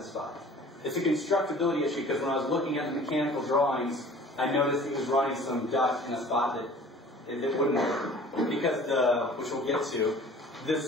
spot. It's a constructability issue because when I was looking at the mechanical drawings, I noticed he was running some duct in a spot that it wouldn't work. Because which we'll get to, the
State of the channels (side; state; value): both; normal; correlation 0.47